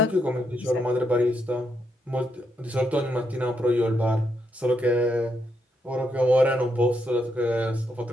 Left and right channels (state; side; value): normal; both; correlation 0.79